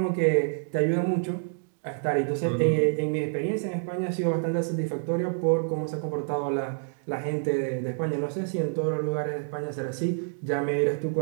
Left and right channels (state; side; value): silent; left; digital silence